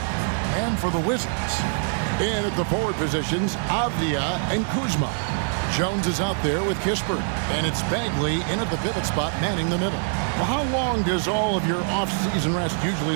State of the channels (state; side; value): silent; left; 62 dB below the other